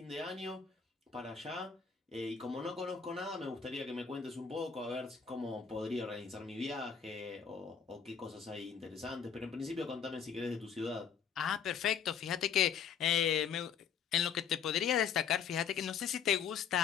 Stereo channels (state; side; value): quieter; right; 7.1 dB